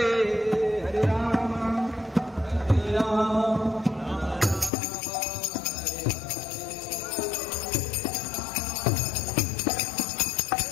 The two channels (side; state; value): right; drops out; at 4.7 s